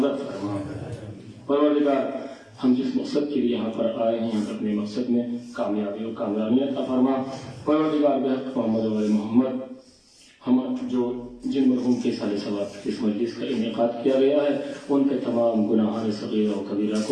فرما۔ پروردگار، ہم جس مقصد کے لیے یہاں پر آئے ہیں، اپنے مقصد میں کامیابی اور کامیابی عطا فرما۔ پروردگار بحق محمد و محمد، ہم جن مرحوم کے سال ثواب اس مجلس کا انعقاد کیا گیا ہے، ان کے تمام گناہان صغیرہ و کبیرہ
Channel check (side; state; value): both; identical; correlation 1.00